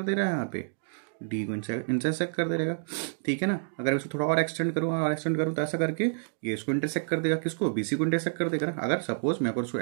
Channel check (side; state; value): left; silent; digital silence